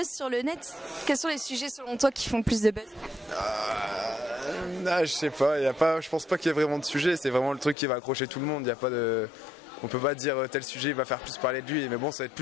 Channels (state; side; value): drops out; right; at 7.8 s